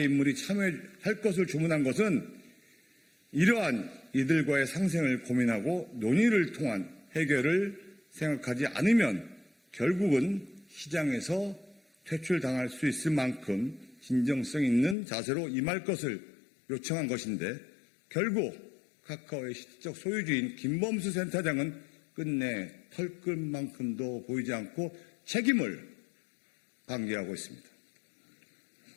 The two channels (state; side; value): drops out; right; at 15.0 s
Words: 인물이 참여할 것을 주문한 것은 이러한 이들과의 상생을 고민하고 논의를 통한 해결을 생각하지 않으면 결국은 시장에서 퇴출당할 수 있을 만큼 진정성 있는 자세로 임할 것을 요청한 것인데 결국 카카오의 실질적 소유주인 김범수 센터장은 끝내 털끝만큼도 보이지 않고 책임을 방기하고 있습니다.